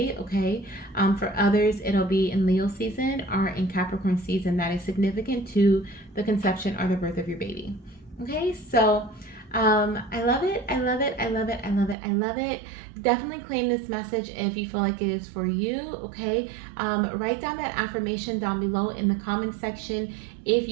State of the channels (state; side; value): drops out; left; at 12.0 s